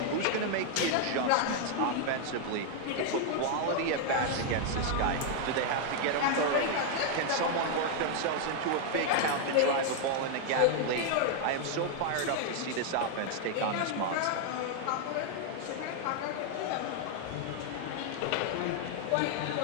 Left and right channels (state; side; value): different; both; correlation 0.00